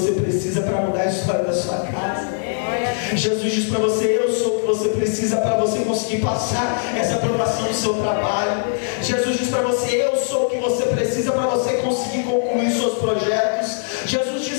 precisa para mudar a história da sua casa. Jesus diz para você: eu sou o que você precisa para você conseguir passar essa aprovação do seu trabalho. Jesus diz para você: eu sou o que você precisa para você conseguir concluir seus projetos. Jesus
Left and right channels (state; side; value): silent; right; digital silence